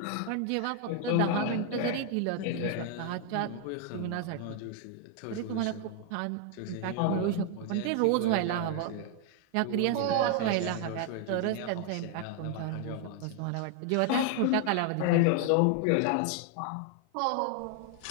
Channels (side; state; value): both; different; correlation 0.00